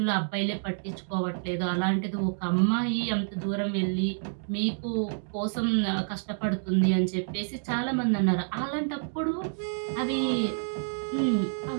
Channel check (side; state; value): left; silent; digital silence